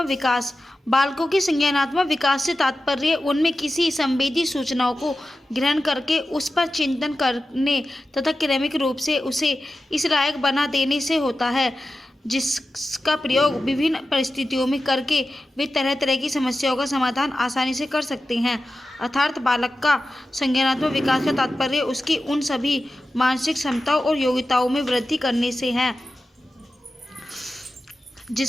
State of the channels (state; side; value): normal; both; correlation 0.93